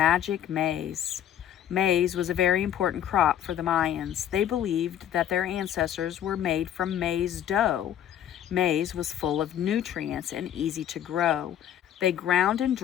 maize. Maize was a very important crop for the Mayans. They believed that their ancestors were made from maize dough. Maize was full of nutrients and easy to grow. They ground and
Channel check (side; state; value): right; quieter; 10.5 dB